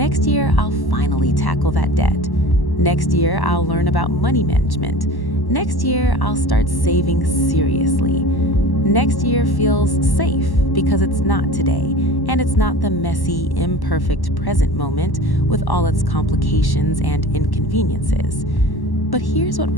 year, I'll finally tackle that debt. Next year, I'll learn about money management. Next year, I'll start saving seriously. Next year feels safe because it's not today, and it's not the messy, imperfect present moment with all its complications and inconveniences. But here's what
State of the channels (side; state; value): right; late; 1.1 ms